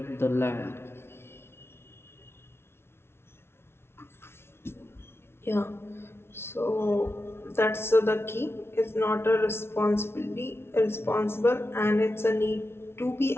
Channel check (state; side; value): late; right; 0.12 ms